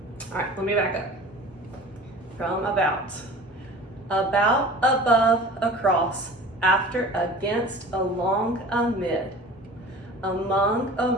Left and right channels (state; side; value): normal; both; correlation 0.41